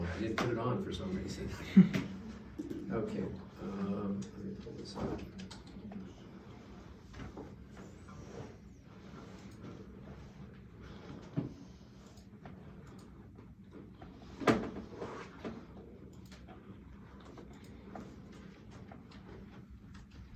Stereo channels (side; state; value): both; identical; correlation 1.00